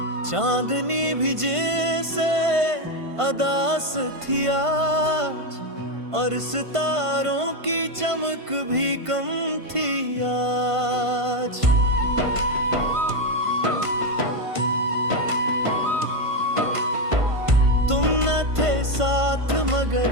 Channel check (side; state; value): left; late; 1.5 ms